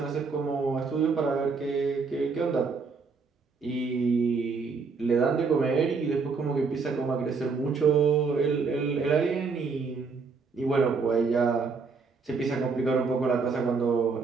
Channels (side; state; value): left; quieter; 4.8 dB